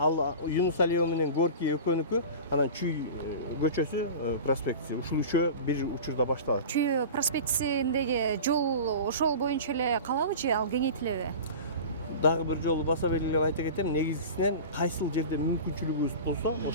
Юнус Алиева менен Горький экөөнүкү, анан Чүй көчөсү проспектиси. Ушул үчөө бир учурда башталат. Чүй проспектисиндеги жол ошол боюнча эле калабы же ал кеңейтилеби? дагы бир жолу баса белгилеп айта кетем, негизгисинен кайсыл жерде мүмкүнчүлүгүбүз болсо,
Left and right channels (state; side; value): inverted; both; correlation -0.33